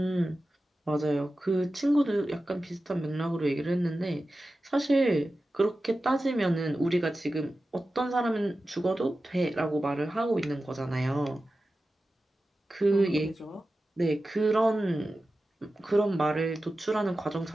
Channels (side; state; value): both; normal; correlation 0.94